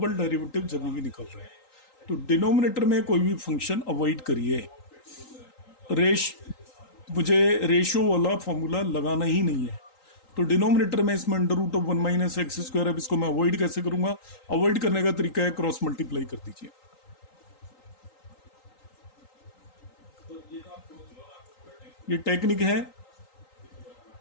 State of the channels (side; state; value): right; late; 3.8 ms